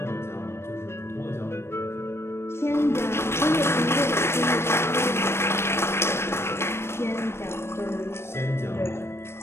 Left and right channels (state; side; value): late; right; 0.12 ms